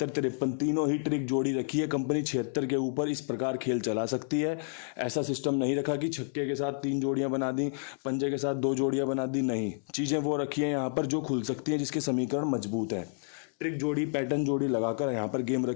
53 तीनों ही ट्रिक जोड़ी रखी है कंपनी। 76 के ऊपर इस प्रकार खेल चला सकती है। ऐसा सिस्टम नहीं रखा कि छक्के के साथ 3 जोड़ियां बना दी, पंजे के साथ 2 जोड़ियां बना दी, नहीं। चीज़ें वो रखी हैं यहाँ पर जो खुल सकती हैं, जिसके समीकरण मजबूत हैं। ट्रिक जोड़ी, पैटर्न जोड़ी लगाकर यहाँ पर गेम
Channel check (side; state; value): right; silent; 58 dB below the other